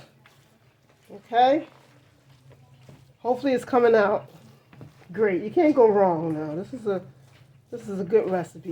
Okay? Hopefully it's coming out great. You can't go wrong now. This is a good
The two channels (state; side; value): identical; both; correlation 1.00